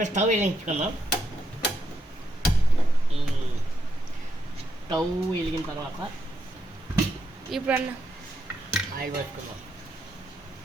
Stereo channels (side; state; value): both; normal; correlation 0.80